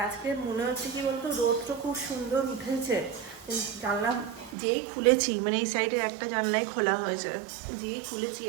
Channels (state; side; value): drops out; left; at 4.5 s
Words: আজকে মনে হচ্ছে কি বলতো, রোদটা খুব সুন্দর উঠেছে। জানলা যেই খুলেছি, মানে এই সাইডের একটা জানলাই খোলা হয়েছে, যেই খুলেছি